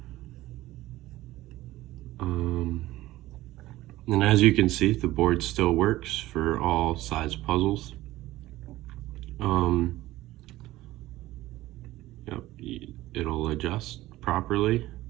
And as you can see, the board still works for all size puzzles. Yep, it'll adjust properly.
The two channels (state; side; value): quieter; left; 16.7 dB